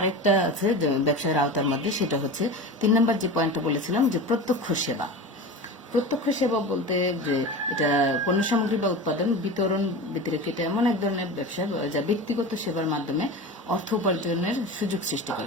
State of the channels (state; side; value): normal; both; correlation 0.29